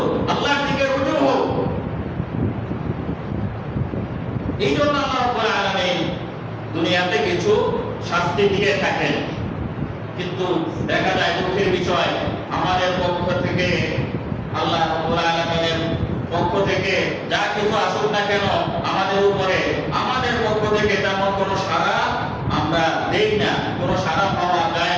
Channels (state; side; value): identical; both; correlation 1.00